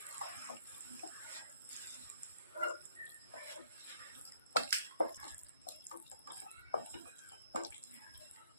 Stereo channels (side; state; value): both; inverted; correlation -0.62